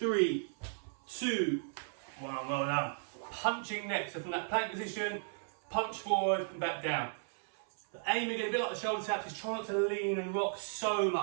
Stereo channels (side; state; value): left; silent; 54 dB below the other